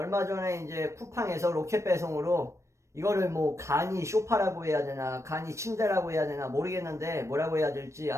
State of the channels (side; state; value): left; late; 0.14 ms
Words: 전에 이제 쿠팡에서 로켓 배송으로 이거를 뭐 간이 쇼파라고 해야 되나 간이 침대라고 해야 되나 모르겠는데 뭐라고 해야 될지